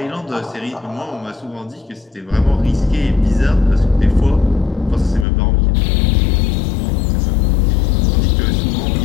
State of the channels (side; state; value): right; drops out; at 5.2 s